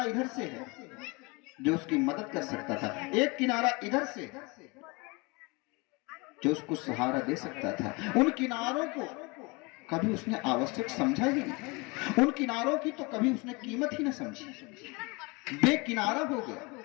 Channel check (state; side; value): quieter; right; 27.2 dB